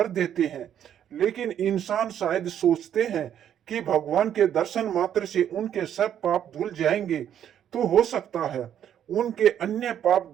देते हैं। लेकिन इंसान शायद सोचते हैं कि भगवान के दर्शन मात्र से उनके सब पाप धुल जाएंगे, तो हो सकता है उनके अन्य पाप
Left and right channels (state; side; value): quieter; left; 9.8 dB